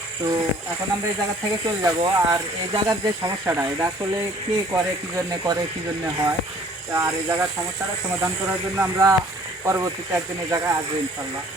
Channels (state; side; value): normal; both; correlation 0.55